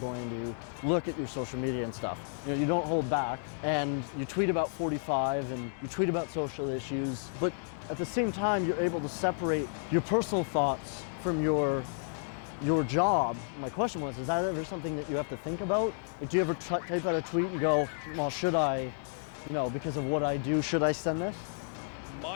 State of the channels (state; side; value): silent; right; digital silence